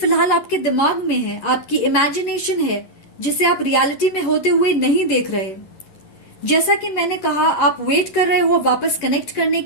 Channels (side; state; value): right; late; 11 ms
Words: आपके दिमाग में है, आपकी इमेजिनेशन है, जिसे आप रियलिटी में होते हुए नहीं देख रहे। जैसा कि मैंने कहा, आप वेट कर रहे हो वापस कनेक्ट करने